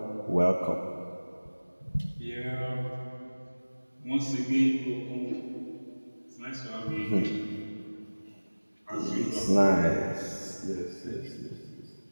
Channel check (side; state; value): both; inverted; correlation -1.00